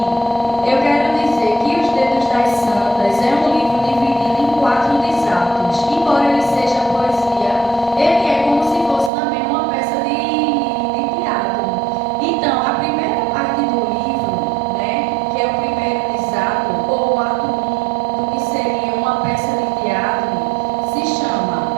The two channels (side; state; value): left; drops out; at 9.1 s